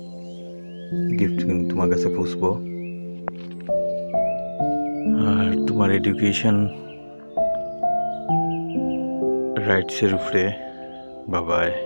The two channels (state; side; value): inverted; both; correlation -1.00